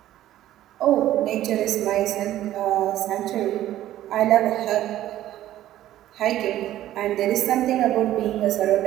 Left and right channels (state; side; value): quieter; left; 13.4 dB